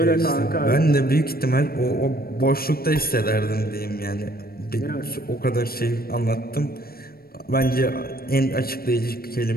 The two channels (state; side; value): late; right; 0.44 ms